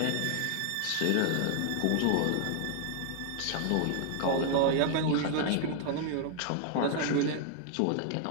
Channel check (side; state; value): both; different; correlation 0.00